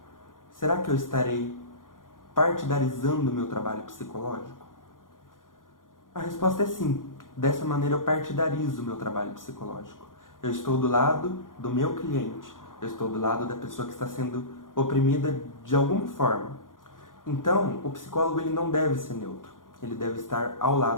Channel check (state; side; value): late; right; 0.89 ms